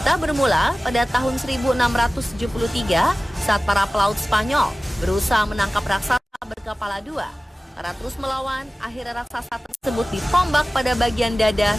bermula pada tahun 1673 saat para pelaut Spanyol berusaha menangkap raksasa berkepala 2. Karena terus melawan, akhirnya raksasa tersebut ditombak pada bagian dada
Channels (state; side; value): normal; both; correlation 0.96